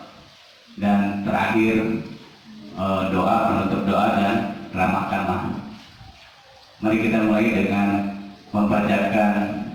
dan terakhir doa, penutup doa dan ramah tamah. Mari kita mulai dengan membacakan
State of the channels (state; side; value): identical; both; correlation 1.00